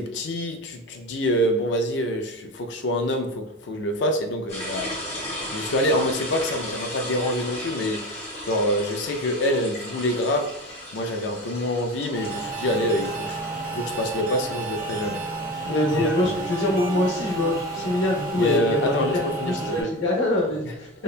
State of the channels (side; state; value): both; normal; correlation 0.26